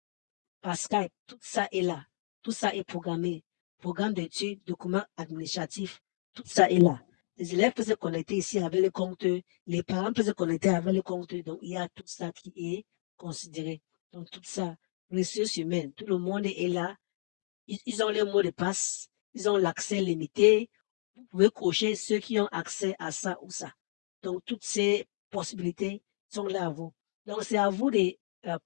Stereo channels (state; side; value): silent; right; digital silence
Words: par Skype, tout ça est là. Tout ça est programmé. Programme d'études, documents administratifs, tout ça est là. Les élèves peuvent se connecter ici avec le compte, les parents peuvent se connecter avec le compte, donc il y a tout ça qui est considéré. Donc tout ça, ressources humaines, tout le monde est là. Ils ont le mot de passe, ils ont l'accès limité. Vous pouvez cocher ceux qui ont accès à ça ou ça. Donc toutes ces possibilités sont là à vous. Donc c'est à vous de